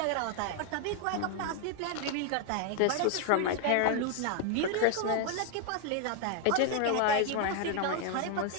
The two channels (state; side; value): different; both; correlation 0.00